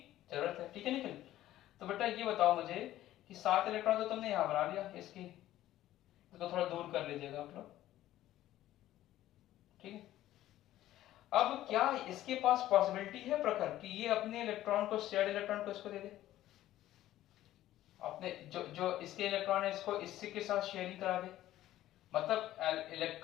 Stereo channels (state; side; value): quieter; right; 14.0 dB